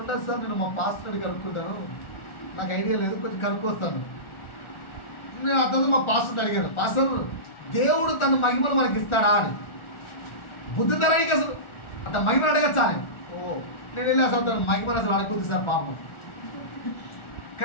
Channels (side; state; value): right; late; 1.4 ms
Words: సార్, నేను మా పాస్టర్ని కనుక్కుంటాను, నాకు ఐడియా లేదు, కొంచెం కనుక్కొస్తాను. నేను అతను మా పాస్టర్ని అడిగాను, పాస్టర్ దేవుడు తన మహిమను మనకి ఇస్తాడా అని. బుద్ధి తరానికి అసలు అంత మహిమను అడగచ్చా అని. నేను వెళ్ళి అసలు తన మహిమను అసలు అడగద్దు సార్ పాపం.